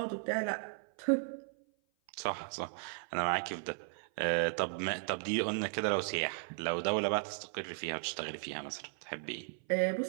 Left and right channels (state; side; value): silent; left; 54 dB below the other